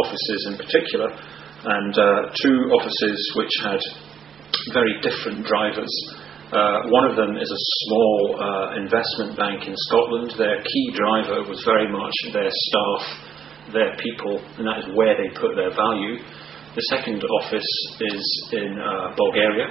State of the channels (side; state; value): left; quieter; 8.0 dB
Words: in particular, and two offices which had very different drivers. One of them is a small investment bank in Scotland. Their key driver was very much their staff, their people, and that is where they put their value. The second office is in Bulgaria,